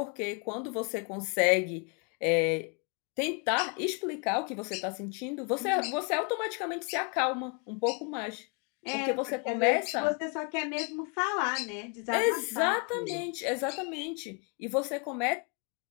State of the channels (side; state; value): right; quieter; 34.9 dB